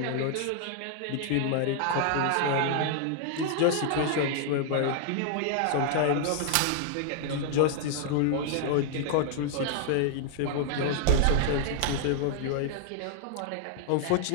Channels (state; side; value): different; both; correlation 0.00